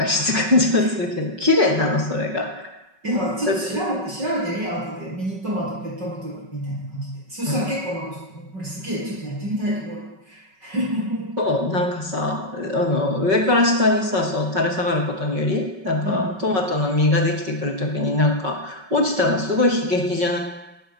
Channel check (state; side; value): late; left; 5.3 ms